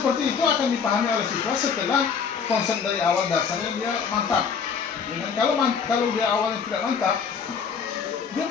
itu akan dipahami oleh siswa setelah konsep dari awal dasarnya dia mantap. Ya kan? Kalau dia awalnya tidak mantap, dia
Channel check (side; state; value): right; quieter; 6.3 dB